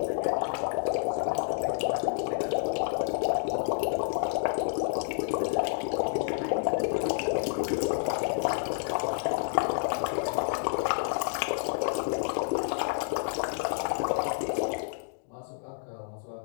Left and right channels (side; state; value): right; silent; digital silence